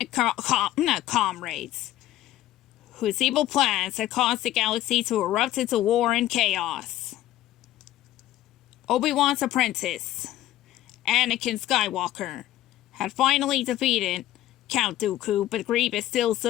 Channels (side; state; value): right; quieter; 14.1 dB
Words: comrades, whose evil plans had caused the galaxy to erupt into war and chaos. Obi-Wan's apprentice, Anakin Skywalker, had finally defeated Count Dooku, but Grievous still